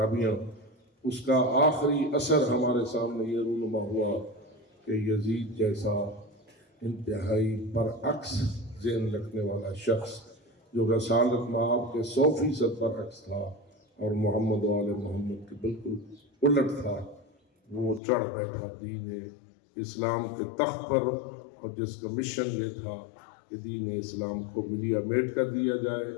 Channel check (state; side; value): drops out; right; at 18.0 s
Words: اس کا آخری اثر ہمارے سامنے یہ رونما ہوا کہ یزید جیسا انتہائی برعکس ذہن رکھنے والا شخص، جو رسالت مآب کے 100% برعکس تھا اور محمد و آل محمد کے بالکل الٹ تھا، وہ چڑھ بیٹھا دین اسلام کے تخت پر، اور جس کا مشن یہ تھا کہ دین اسلام کو ملیا میٹ کر دیا جائے